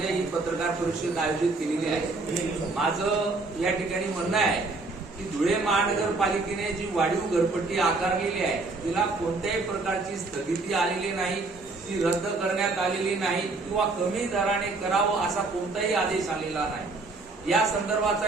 ही पत्रकार परिषद आयोजित केलेली आहे. माझं या ठिकाणी म्हणणं आहे की धुळे महानगरपालिकेने जी वाढीव घरपट्टी आकारलेली आहे तिला कोणत्याही प्रकारची स्थगिती आलेली नाही, ती रद्द करण्यात आलेली नाही किंवा कमी दराने करावं असा कोणताही आदेश आलेला नाही. या संदर्भाचा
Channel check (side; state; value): left; quieter; 3.5 dB